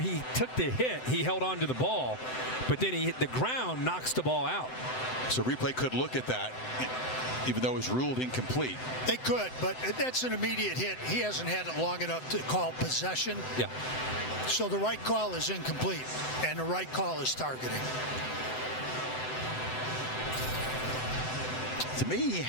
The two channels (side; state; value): right; late; 7.8 ms